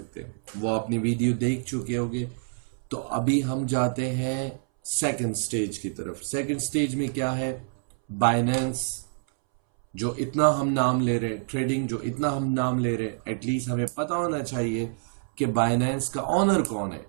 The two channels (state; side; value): silent; left; 60 dB below the other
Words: हैं, वो अपनी वीडियो देख चुके होंगे। तो अभी हम जाते हैं सेकंड स्टेज की तरफ। सेकंड स्टेज में क्या है? बाइनेंस, जो इतना हम नाम ले रहे हैं, ट्रेडिंग जो इतना हम नाम ले रहे हैं, एटलीस्ट हमें पता होना चाहिए कि बाइनेंस का ऑनर कौन है।